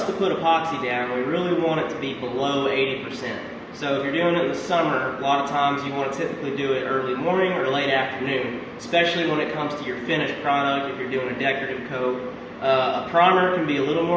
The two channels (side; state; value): both; identical; correlation 1.00